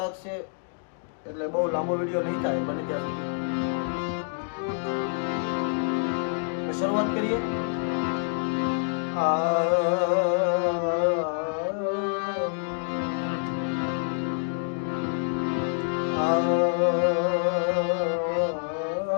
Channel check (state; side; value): silent; right; 60 dB below the other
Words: છે એટલે બહુ લાંબો વિડીયો નહીં થાય. બને ત્યાં સુધી શરૂઆત કરીએ.